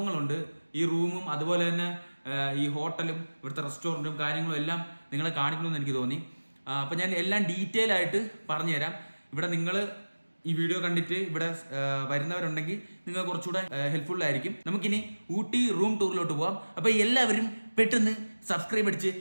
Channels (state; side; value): inverted; both; correlation -1.00